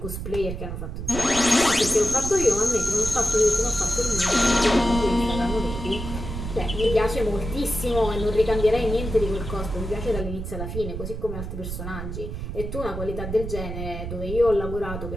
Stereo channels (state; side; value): noise; right; rumble, 6 dB below the sound